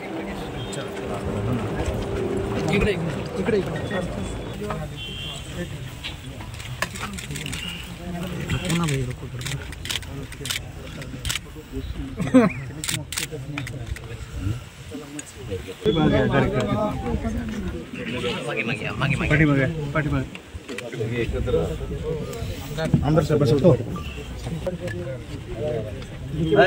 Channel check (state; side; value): identical; both; correlation 1.00